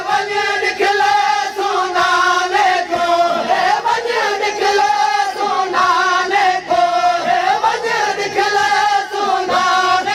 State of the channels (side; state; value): both; identical; correlation 1.00